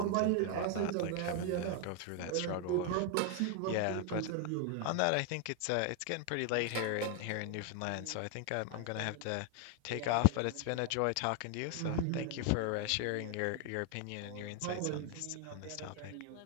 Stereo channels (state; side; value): different; both; correlation 0.00